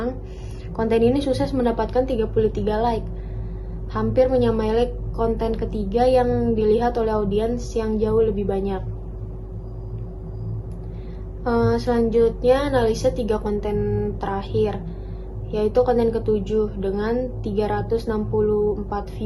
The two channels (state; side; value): identical; both; correlation 1.00